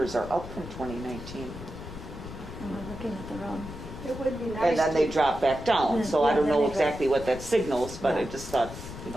are up from 2019. And we're looking at the wrong. It would be nice. And then they drop back down, so I don't Yeah, know then they go- exactly what that signals, but I Yeah. just thought, you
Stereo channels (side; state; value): left; noise; rumble, 11 dB below the sound